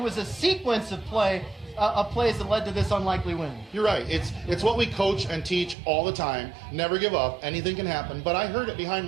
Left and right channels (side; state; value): left; drops out; at 5.8 s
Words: a sequence of plays that led to this unlikely win. You're right. It's what we coach and teach all the time. Never give up. Anything can happen. But I heard it